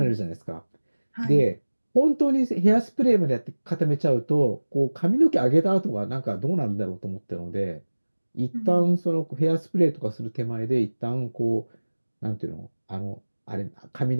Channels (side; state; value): both; inverted; correlation -1.00